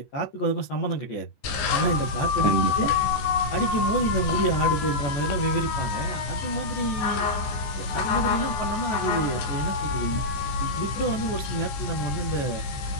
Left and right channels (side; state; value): right; late; 15 ms